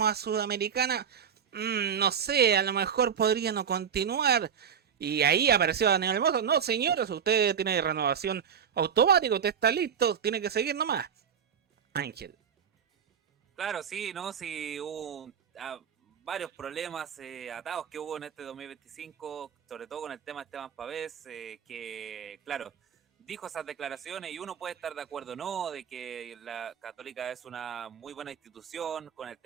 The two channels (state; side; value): quieter; left; 7.7 dB